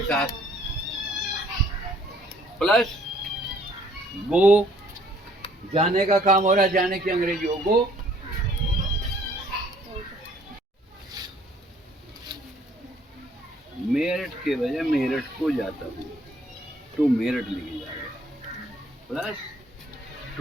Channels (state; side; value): normal; both; correlation 0.61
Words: साथ। प्लस गो, जाने का काम हो रहा है, जाने की अंग्रेजी हो गो। मेरठ के बजाय मेरठ को जाता हूँ, तो मेरठ लिखे जाएगा। Plus